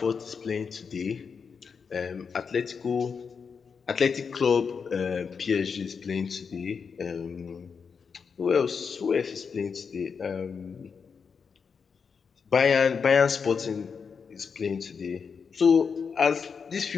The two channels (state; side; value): quieter; right; 5.9 dB